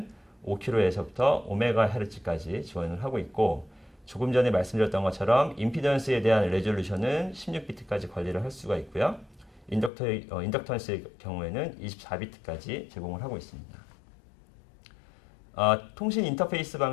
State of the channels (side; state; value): right; drops out; at 9.9 s